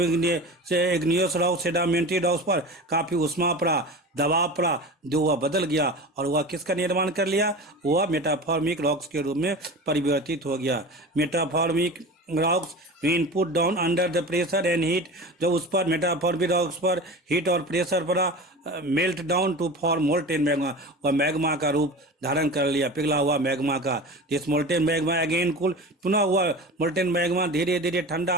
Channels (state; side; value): normal; both; correlation 0.32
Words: इग्नियस रॉक सेडिमेंट्री रॉक्स पर काफ़ी उष्मा पड़ा, दबाव पड़ा, जो वह बदल गया और वह किसका निर्माण कर लिया? वह मेटाफॉर्मिक रॉक्स के रूप में परिवर्तित हो गया. Metamorphic rocks when put down under the pressure and heat. जब उस पर मेटाफॉर्मिक रॉक्स पर हीट और प्रेशर पड़ा, melt down to form molten magma. वह मैग्मा का रूप धारण कर लिया, पिघला हुआ मैग्मा का. This molten magma again cool. पुनः हुआ मोल्टेन मैग्मा धीरे धीरे ठंडा